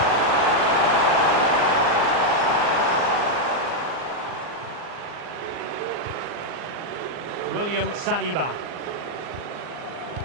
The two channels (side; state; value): left; late; 39 ms